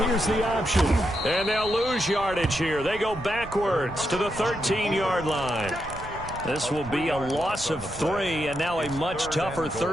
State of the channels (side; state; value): right; noise; rumble, 13 dB below the sound